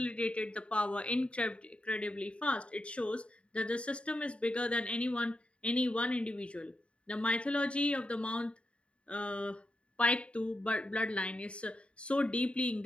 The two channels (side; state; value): right; late; 0.059 ms